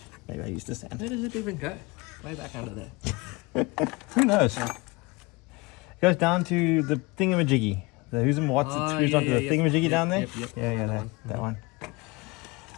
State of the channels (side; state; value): right; quieter; 24.8 dB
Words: Maybe I used the sand. Where does it even go? Way back under there. Who knows? It goes down to the thingamajiggy. The who's and what's Oh, it screws yeah, onto yeah, the yep. thingamajiggy down there? Yep. Yeah, That that one. one.